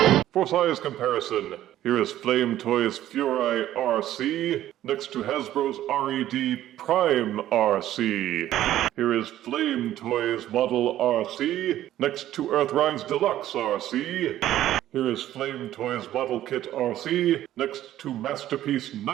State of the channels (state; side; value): quieter; left; 13.0 dB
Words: For size comparison, here is Flame Toys Furai Arcee next to Hasbro's RED Prime Arcee. Here is Flame Toys Model Arcee next to Earthride's Deluxe Arcee. Here is Flame Toys Model Kit Arcee next to Masterpiece